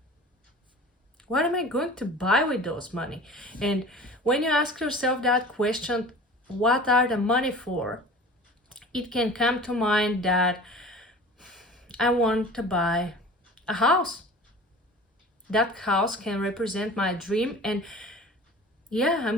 What am I going to buy with those money? And when you ask yourself that question, what are the money for? It can come to mind that I want to buy a house. That house can represent my dream, and yeah, I'm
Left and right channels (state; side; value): normal; both; correlation 0.41